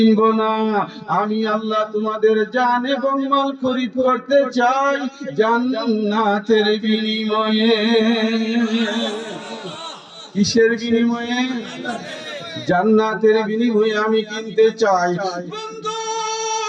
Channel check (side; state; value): both; identical; correlation 1.00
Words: না। আমি আল্লাহ তোমাদের জান এবং মাল খরিদ করতে চাই জান্নাতের বিনিময়ে। কিসের বিনিময়ে? জান্নাতের বিনিময়ে আমি কিনতে চাই।